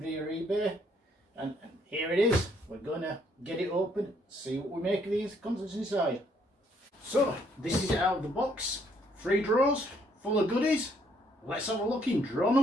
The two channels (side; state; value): both; normal; correlation 0.68